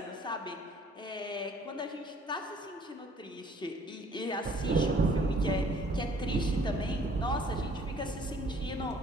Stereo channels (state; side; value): normal; both; correlation 0.58